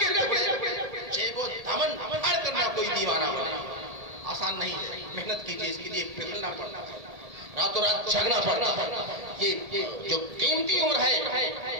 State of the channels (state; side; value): late; left; 1.7 ms